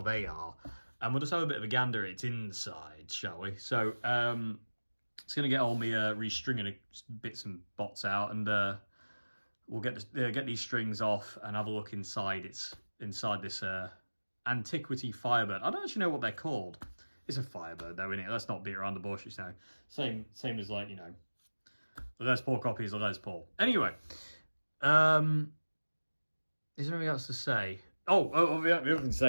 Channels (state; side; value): inverted; both; correlation -1.00